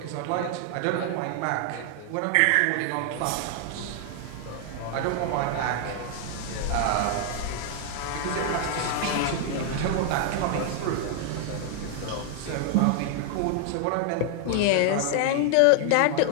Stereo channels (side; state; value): both; different; correlation 0.00